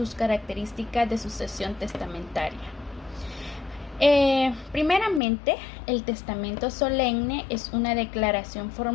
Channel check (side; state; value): right; drops out; at 5.2 s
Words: características de sucesión testamentaria. Primeramente, el testamento solemne es una declaración